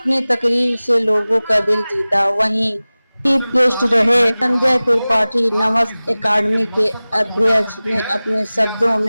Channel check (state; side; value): inverted; both; correlation -0.98